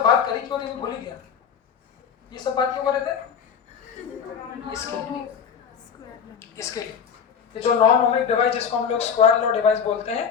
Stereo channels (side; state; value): right; quieter; 7.1 dB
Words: बात करी क्यों नहीं, भूल ही गया। ये सब बात क्यों कर रहे थे? इसके लिए ये जो नॉन ओमिक डिवाइस जिसको हम लोग स्क्वायर लॉ डिवाइस बोलते